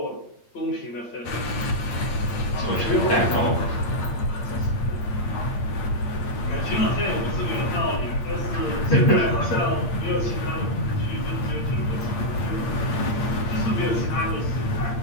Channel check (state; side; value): late; right; 8.7 ms